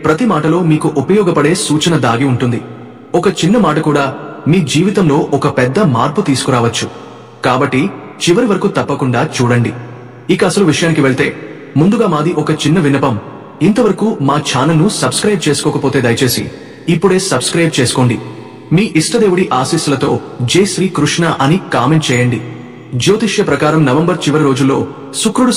ప్రతి మాటలో మీకు ఉపయోగపడే సూచన దాగి ఉంటుంది. ఒక చిన్న మాట కూడా మీ జీవితంలో ఒక పెద్ద మార్పు తీసుకురావచ్చు. కాబట్టి చివరి వరకు తప్పకుండా చూడండి. ఇక అసలు విషయానికి వెళ్తే ముందుగా మాది ఒక చిన్న విన్నపం. ఇంతవరకు మా ఛానల్ను సబ్స్క్రైబ్ చేసుకోకపోతే దయచేసి ఇప్పుడే సబ్స్క్రైబ్ చేసుకోండి. మీ ఇష్టదేవుడి ఆశీస్సులతో జై శ్రీ కృష్ణ అని కామెంట్ చేయండి. జ్యోతిష్య ప్రకారం నవంబర్ చివరి రోజుల్లో శుక్రుడు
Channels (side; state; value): both; identical; correlation 1.00